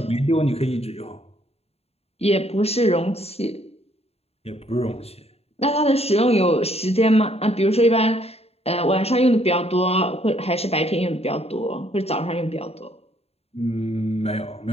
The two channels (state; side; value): late; right; 0.29 ms